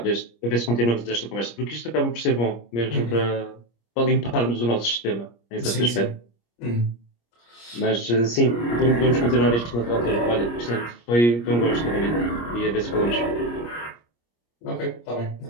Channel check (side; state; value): right; late; 25 ms